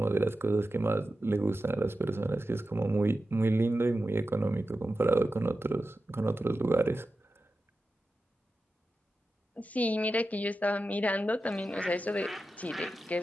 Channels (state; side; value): normal; both; correlation 0.92